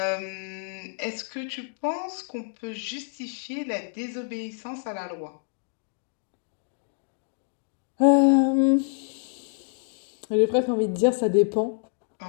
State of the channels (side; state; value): right; silent; 60 dB below the other